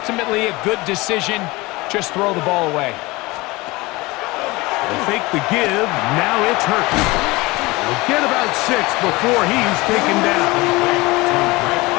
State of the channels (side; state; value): right; quieter; 22.3 dB